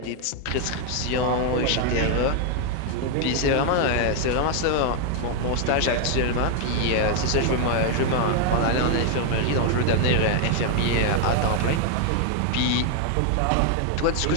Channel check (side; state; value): both; different; correlation 0.00